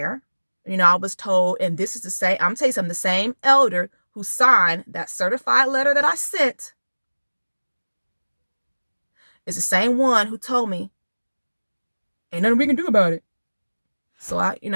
I was told, and this is the same, I'm telling you something, the same elder who signed that certified letter that I sent is the same one who told me, ain't nothing we can do about it. So I ain't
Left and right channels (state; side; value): inverted; both; correlation -1.00